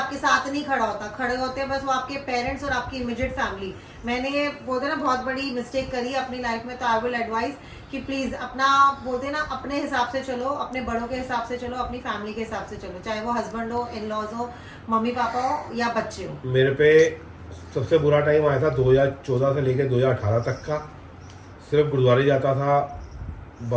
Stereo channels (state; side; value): identical; both; correlation 1.00